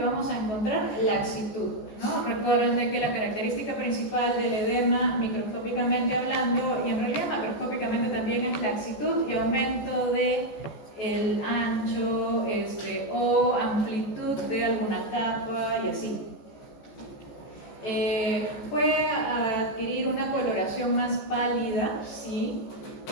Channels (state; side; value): late; right; 14 ms